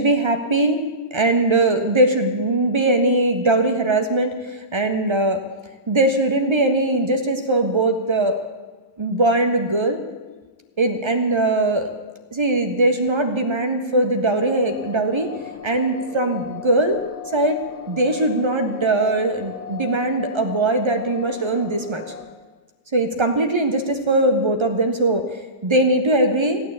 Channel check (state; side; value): late; left; 1.3 ms